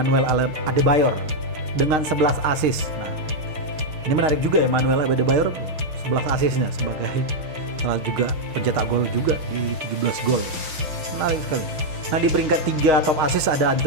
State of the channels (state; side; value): late; left; 6.1 ms